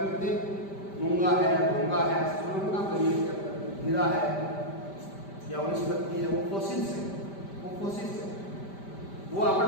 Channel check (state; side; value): late; right; 5.1 ms